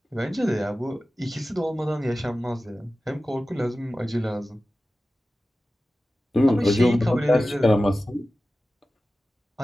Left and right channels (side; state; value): both; normal; correlation 0.95